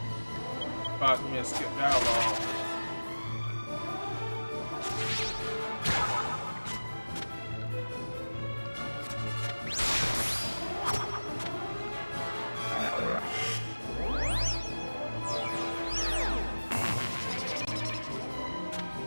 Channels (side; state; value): both; inverted; correlation -1.00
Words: Cause me to skip dialogue.